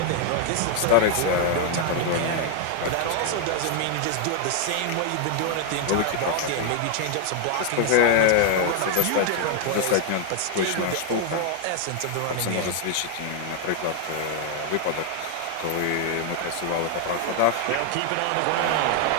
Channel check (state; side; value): different; both; correlation 0.00